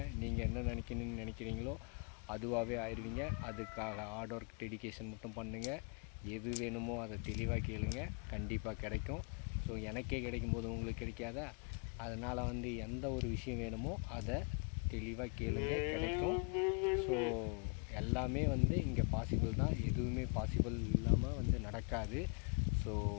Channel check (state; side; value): quieter; right; 38.2 dB